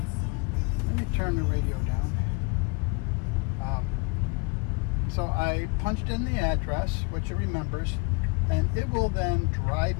let me turn the radio down. So I punched in the address, which it remembers, and it will then drive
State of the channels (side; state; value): right; quieter; 28.8 dB